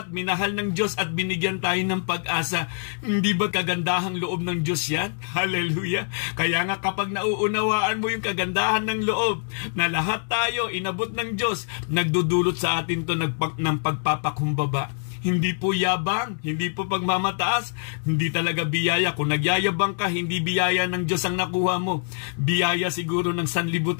minahal ng Diyos at binigyan tayo ng pag-asa. Hindi ba kagandahang loob ng Diyos yan? Hallelujah! Kaya nga kapag nauunawaan mo yung kagandahan ng loob, na lahat tayo inabot ng Diyos, nagdudulot sa atin to ng pagpapakumbaba. Hindi po yabang, hindi po pagmamataas, hindi talaga biyaya. Kung nagyayabang ka, hindi biyaya ng Diyos ang nakuha mo. Biyaya siguro ng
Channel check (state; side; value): silent; right; digital silence